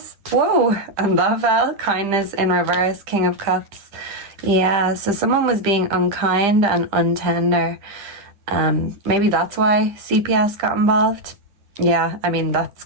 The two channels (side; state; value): left; late; 10 ms